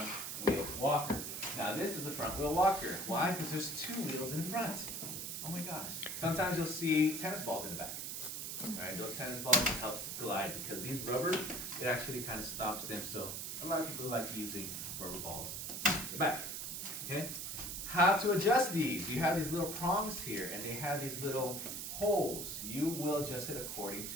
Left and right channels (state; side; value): noise; right; hiss, 5 dB below the sound